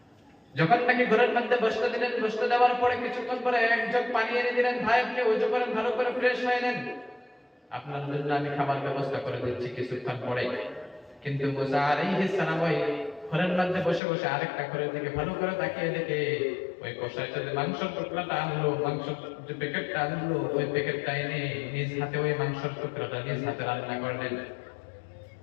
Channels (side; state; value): right; drops out; at 14.0 s